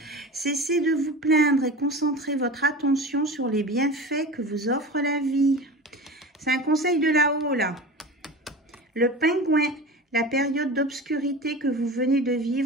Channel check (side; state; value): both; normal; correlation 0.32